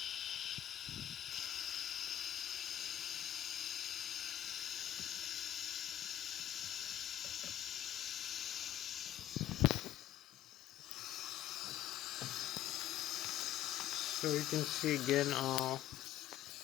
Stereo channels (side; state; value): right; quieter; 12.4 dB